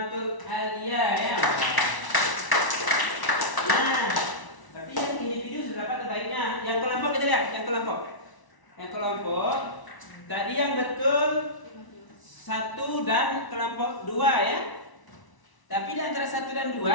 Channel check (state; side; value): late; right; 1.0 ms